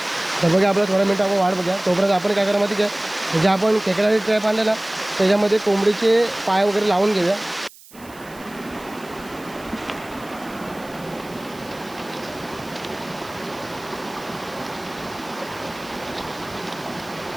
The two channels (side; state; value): right; noise; hiss, 22 dB below the sound